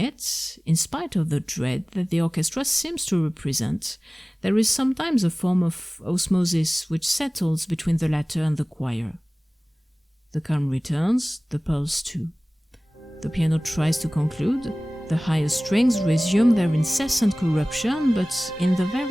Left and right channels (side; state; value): both; normal; correlation 0.98